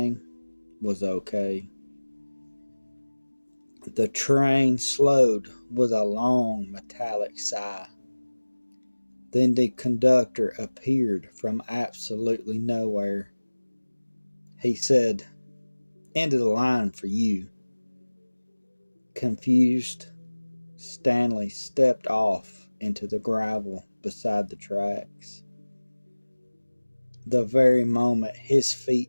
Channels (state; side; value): inverted; both; correlation -1.00